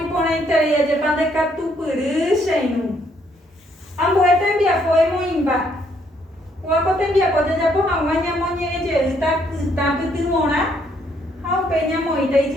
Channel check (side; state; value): both; normal; correlation 0.70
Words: ndekatupyry cheirũ. Ambue tembiapo emoĩmba. Ko'áko tembiapo jajapo hag̃ua ñamoñe'ẽjeýta kytã pytyvõrã ha upéi ñamoĩta